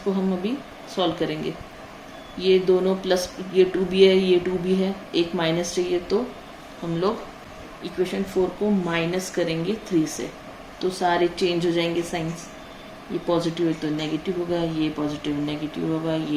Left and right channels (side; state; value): both; identical; correlation 1.00